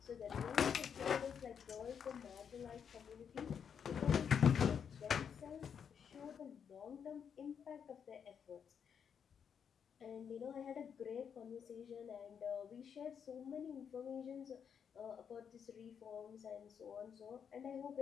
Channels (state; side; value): quieter; right; 7.4 dB